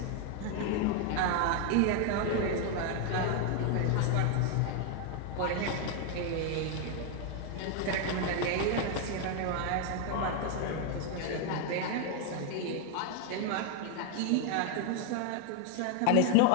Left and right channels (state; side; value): different; both; correlation 0.01